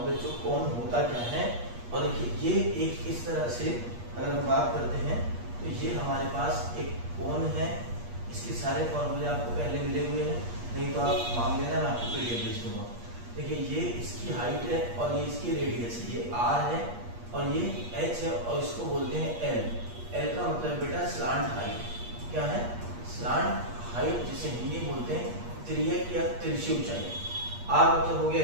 बच्चों, कोन होता क्या है। और देखिए ये एक इस तरह से अगर हम बात करते हैं तो ये हमारे पास एक कोन है, इसके सारे फॉर्मूले आपको पहले मिले हुए हैं, नहीं तो आप मांग लेना, मैं आपको पीडीएफ भेज दूंगा। देखिए ये इसकी हाइट है और ये इसकी रेडियस है, ये आर है और ये एच है और इसको बोलते हैं एल। एल का मतलब बेटा स्लांट हाइट, क्या है स्लांट हाइट, जिसे हिंदी में बोलते हैं तिर्यक या तिरछी ऊंचाई। आर मतलब हो गया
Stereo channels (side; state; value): left; late; 8.4 ms